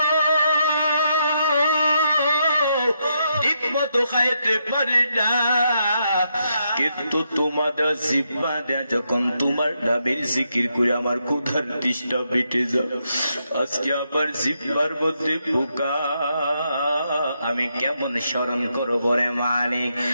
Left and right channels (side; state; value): both; inverted; correlation -0.80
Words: ঠিকমতো খাইতে পারি না, কিন্তু তোমাদের জিহ্বা দেয়া যখন তোমার নামের জিকির করে আমার ক্ষুধার তৃষ্ণা মিটে যায়। আজকে আবার জিহ্বার মধ্যে পোকা, আমি কেমন স্মরণ করবো রে মালিক?